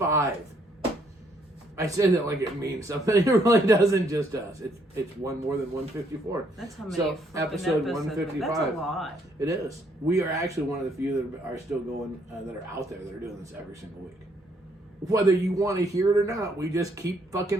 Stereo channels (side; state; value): both; normal; correlation 0.69